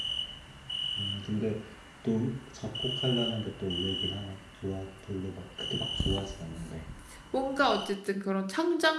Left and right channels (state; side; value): identical; both; correlation 1.00